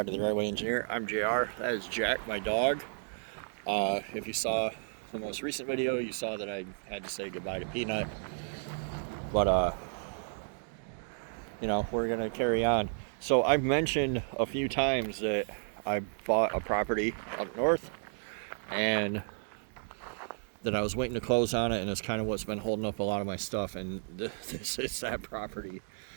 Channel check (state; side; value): silent; left; digital silence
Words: to the Driveway Engineer. I'm JR. That is Jack, my dog. If you saw the most recent video, you saw that I had to say goodbye to Peanut. But, we're going to carry on. So I've mentioned a few times that I bought a property up north and that I was waiting to close on it, and it's kind of what's been holding up a lot of my stuff, and this is that property.